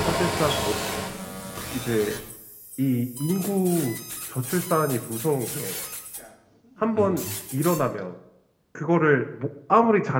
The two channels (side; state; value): both; identical; correlation 1.00